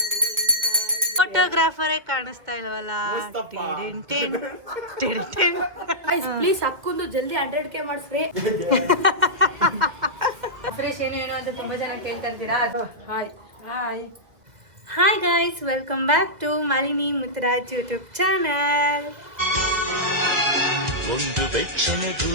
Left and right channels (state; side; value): late; left; 1.8 ms